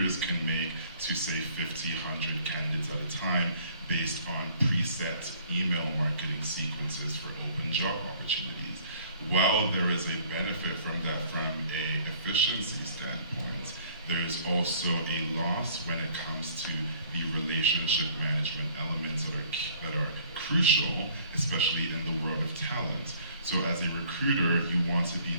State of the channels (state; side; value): inverted; both; correlation -0.56